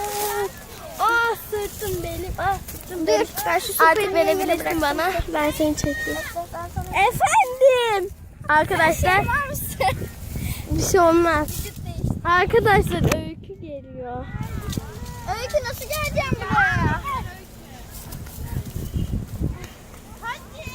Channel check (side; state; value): both; identical; correlation 1.00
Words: Sırtım benim. Sırtım benim. Ben şu Artık verebilirsin bana. Ben seni çekeyim. Efendim. Arkadaşlar. Bir şey olmaz. Arkadaşlar Öykü geliyor. Öykü nasıl geleceğim buraya?